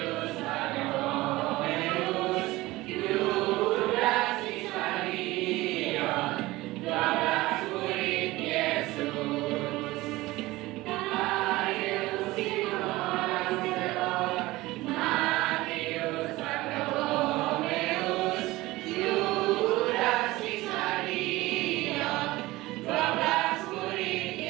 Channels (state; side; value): quieter; left; 19.2 dB